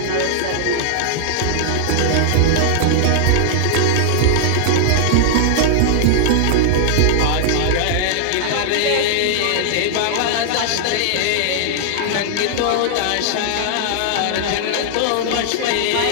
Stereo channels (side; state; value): both; different; correlation -0.01